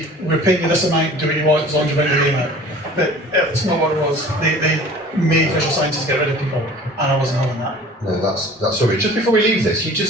we're paying you this amount, do what you want as long as you bring the game out. But it's not what it was. They made visual sciences get rid of people, and I wasn't having that. No, that's sorry. Just before we leave this, you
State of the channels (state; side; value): normal; both; correlation 0.45